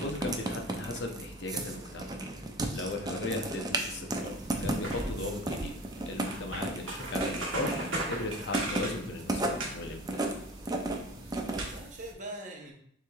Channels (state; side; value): normal; both; correlation 0.37